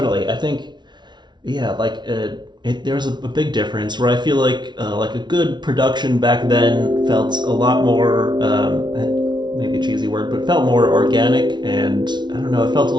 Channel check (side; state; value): left; late; 0.21 ms